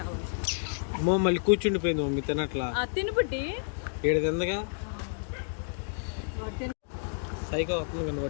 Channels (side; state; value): right; silent; digital silence